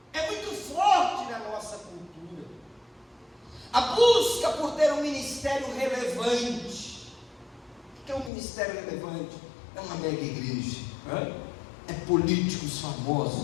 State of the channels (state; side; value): drops out; right; at 8.3 s